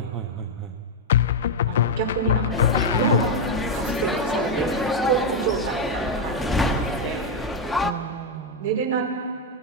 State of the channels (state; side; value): normal; both; correlation 0.00